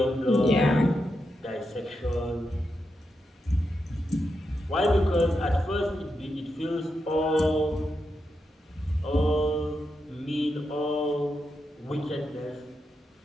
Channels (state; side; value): normal; both; correlation 0.86